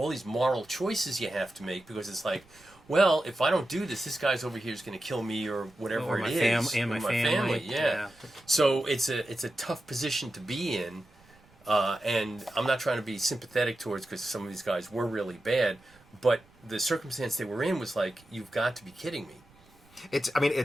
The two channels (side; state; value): right; noise; rumble, 29 dB below the sound